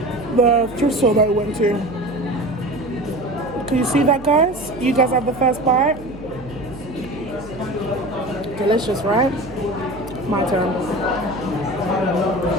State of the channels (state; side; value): noise; right; hum, 17 dB below the sound